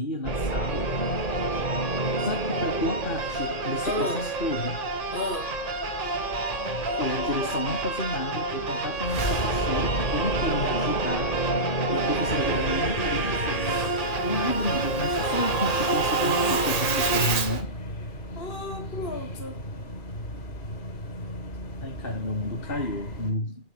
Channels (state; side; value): late; right; 2.4 ms